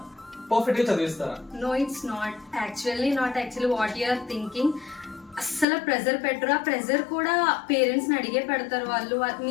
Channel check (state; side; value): drops out; right; at 5.7 s